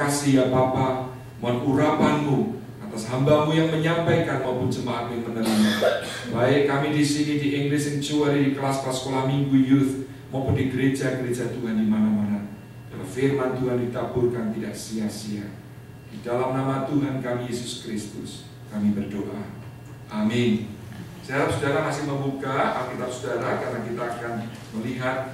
ya Bapa. Mohon urapan-Mu atas hamba-Mu yang menyampaikan maupun jemaat yang menerima. Baik kami di sini di English Sanctuary, di kelas-kelas sekolah minggu youth, maupun di gereja-gereja Tuhan di mana-mana. Biar firman Tuhan ditaburkan tidak sia-sia. Di dalam nama Tuhan kami Yesus Kristus kami berdoa. Amin. Saya harap saudara masih membuka Alkitab saudara, karena kita akan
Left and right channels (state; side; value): identical; both; correlation 1.00